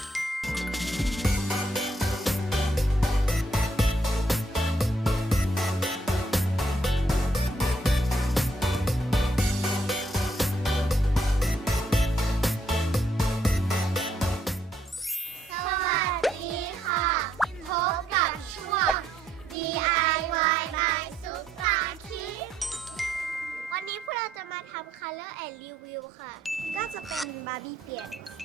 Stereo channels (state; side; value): normal; both; correlation 0.72